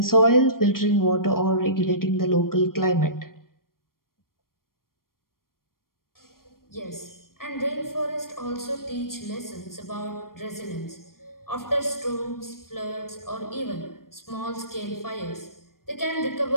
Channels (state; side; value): late; right; 0.92 ms